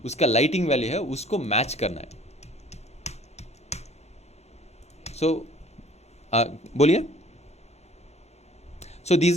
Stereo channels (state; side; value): normal; both; correlation 0.53